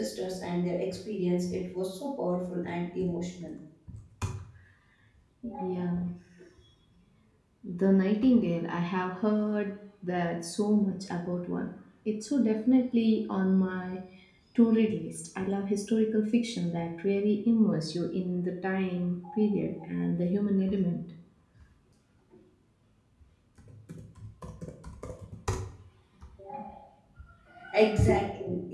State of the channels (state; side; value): identical; both; correlation 1.00